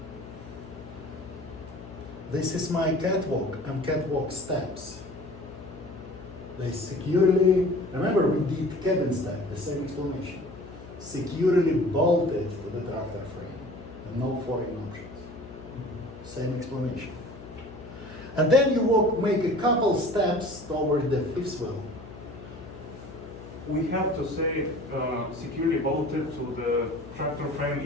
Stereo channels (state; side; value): noise; left; hum, 16 dB below the sound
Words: This is my catwalk and catwalk steps. They securely, remember we did cabin step, the same explanation. Securely bolted to the tractor frame and no foreign options. Same explanation. And then you make a couple steps toward the fifth wheel. we have to say securely bolted to the tractor frame